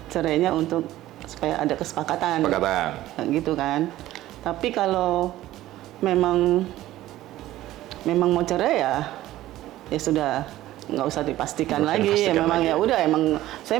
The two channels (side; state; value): left; quieter; 15.0 dB